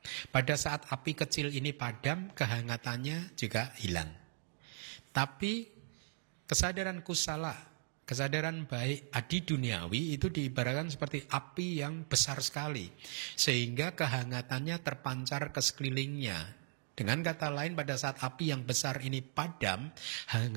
Pada saat api kecil ini padam, kehangatannya juga hilang. Tapi kesadaran kusala, kesadaran baik adi duniawi itu diibaratkan seperti api yang besar sekali, sehingga kehangatannya terpancar ke sekelilingnya. Dengan kata lain, pada saat api yang besar ini padam,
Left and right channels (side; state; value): left; silent; digital silence